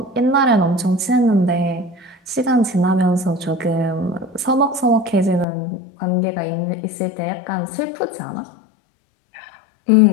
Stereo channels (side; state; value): right; drops out; at 5.5 s